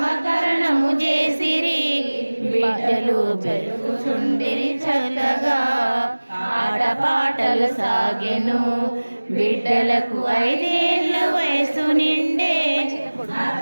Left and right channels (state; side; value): inverted; both; correlation -1.00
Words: చేసిరి. బిడ్డలు పెరుగుచుండిరి చల్లగా. ఆటపాటలు సాగెను బిడ్డలకు 5 ఏళ్ళ వయసు నిండే.